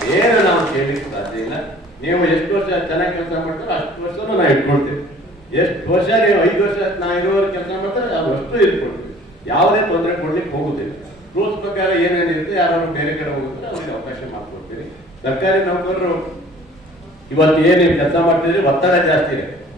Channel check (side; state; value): both; normal; correlation 0.50